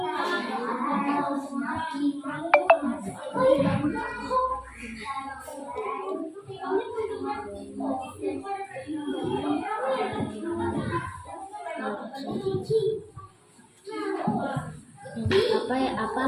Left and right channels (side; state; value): both; identical; correlation 1.00